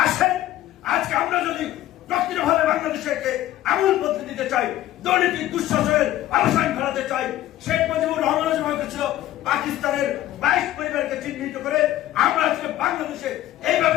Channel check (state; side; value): quieter; right; 13.9 dB